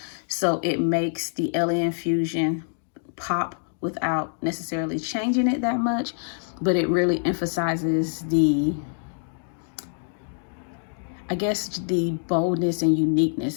so it makes the Alien Fusion pop without necessarily changing it that much, but it really emphasizes the, I guess, the boldness and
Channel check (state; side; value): silent; right; digital silence